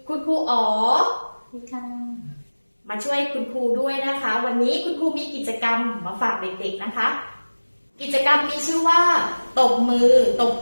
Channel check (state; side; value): inverted; both; correlation -1.00